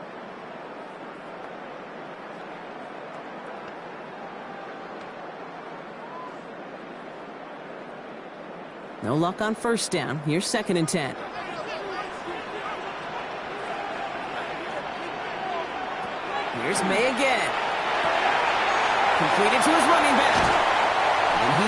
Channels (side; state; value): both; identical; correlation 1.00